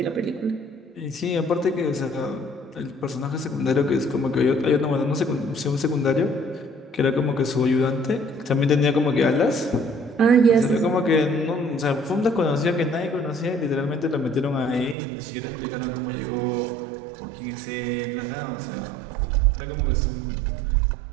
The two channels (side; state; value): left; drops out; at 15.0 s